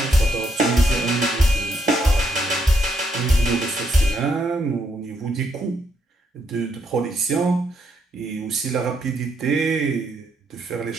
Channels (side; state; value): both; normal; correlation 0.76